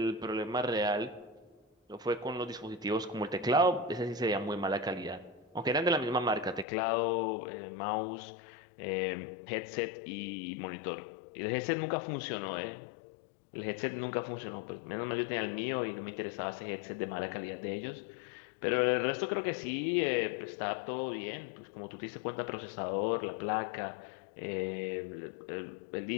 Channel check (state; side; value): drops out; right; at 6.7 s